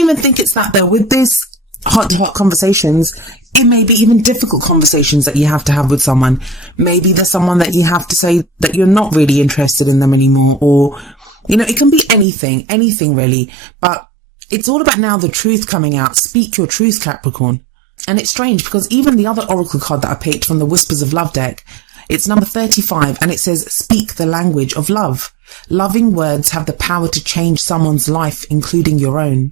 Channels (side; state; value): left; drops out; at 12.2 s